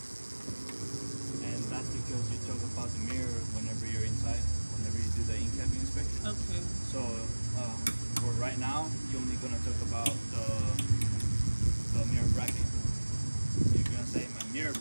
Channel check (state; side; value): inverted; both; correlation -1.00